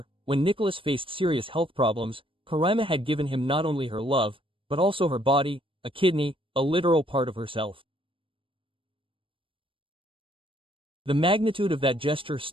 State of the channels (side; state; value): left; late; 0.25 ms